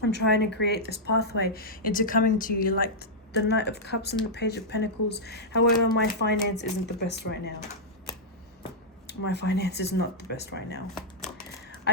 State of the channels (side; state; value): both; normal; correlation -0.08